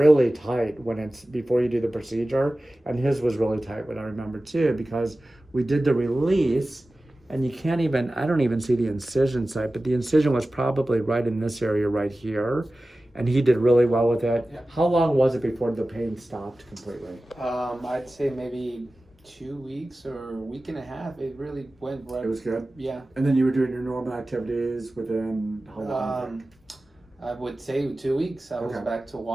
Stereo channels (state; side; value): normal; both; correlation 0.96